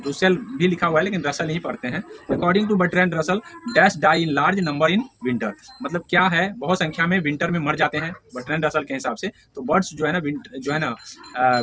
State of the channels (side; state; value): both; identical; correlation 1.00